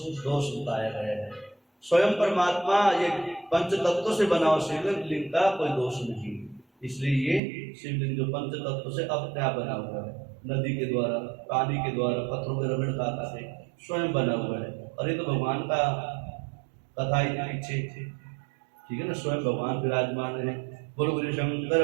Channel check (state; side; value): drops out; left; at 7.4 s